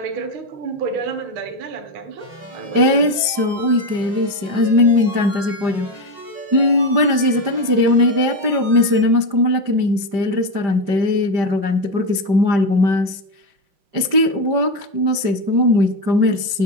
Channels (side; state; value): left; late; 5.1 ms